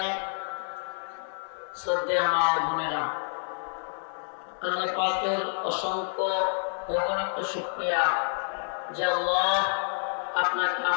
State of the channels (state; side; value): silent; right; digital silence